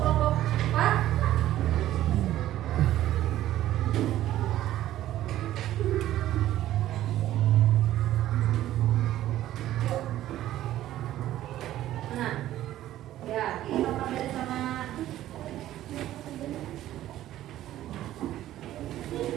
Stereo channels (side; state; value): left; quieter; 13.5 dB